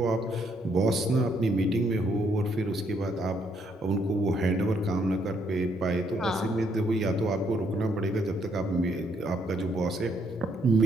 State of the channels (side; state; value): both; normal; correlation 0.71